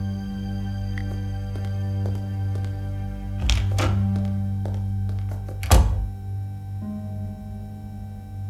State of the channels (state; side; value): identical; both; correlation 1.00